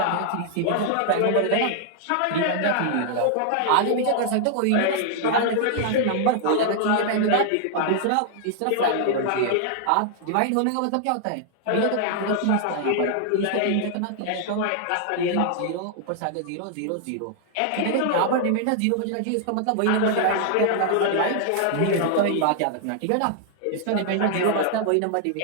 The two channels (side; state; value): both; different; correlation -0.01